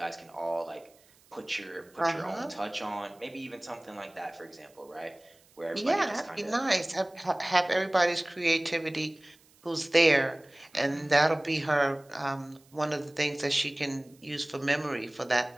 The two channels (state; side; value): noise; right; hiss, 30 dB below the sound